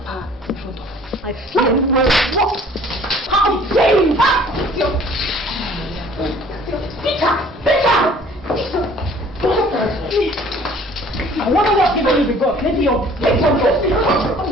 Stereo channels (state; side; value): normal; both; correlation 0.53